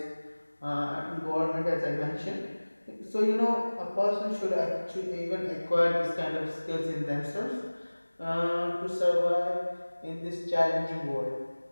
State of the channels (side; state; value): both; inverted; correlation -1.00